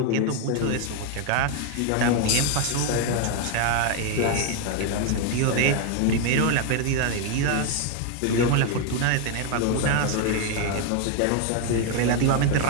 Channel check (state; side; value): different; both; correlation 0.01